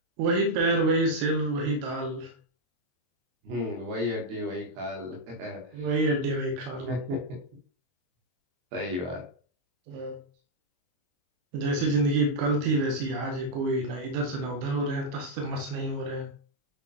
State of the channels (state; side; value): late; left; 22 ms